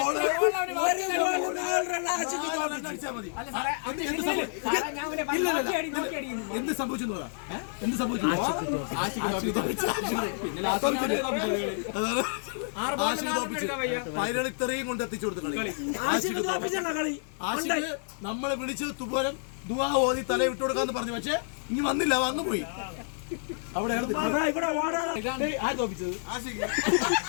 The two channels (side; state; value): right; silent; 58 dB below the other